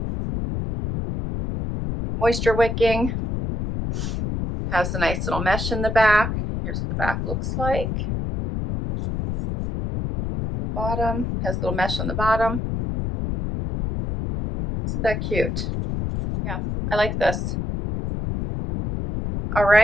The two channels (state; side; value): noise; left; rumble, 3 dB below the sound